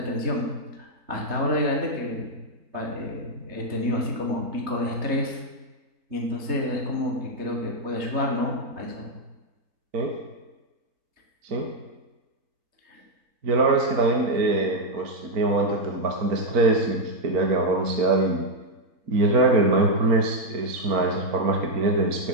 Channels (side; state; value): left; late; 4.4 ms